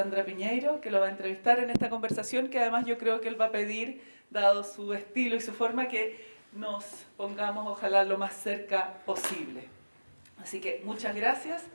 Piñeiro, que lo va a entrevistar en esta conversación, que además yo creo que él va a pedir, dado su estilo y su forma, que nos pongamos, ojalá, lo más cerca posible. Así que muchas gracias,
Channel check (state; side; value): inverted; both; correlation -1.00